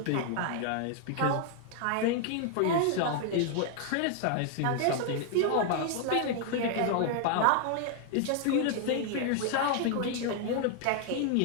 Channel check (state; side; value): different; both; correlation 0.00